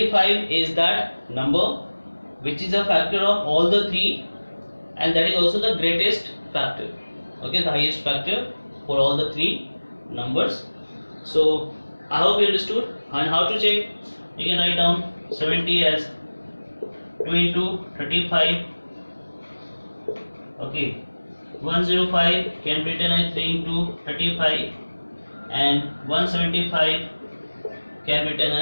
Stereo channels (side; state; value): both; inverted; correlation -1.00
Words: is that number which is a factor of all the 3, and that is also the greatest factor. Okay, the highest factor for all the 3 numbers. So I hope you understood. And how to check? You can write down 70 as 2 into 35. Okay, 105 can be written as 3 into 35, and 175 can be written